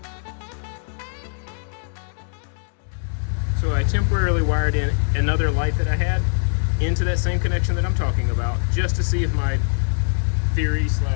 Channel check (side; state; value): right; silent; digital silence